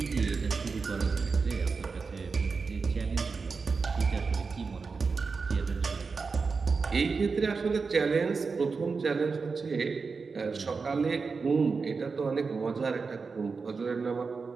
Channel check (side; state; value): left; quieter; 4.7 dB